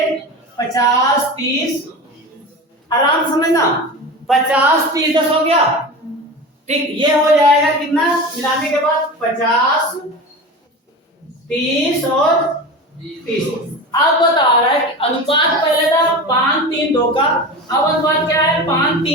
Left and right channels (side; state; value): both; normal; correlation 0.29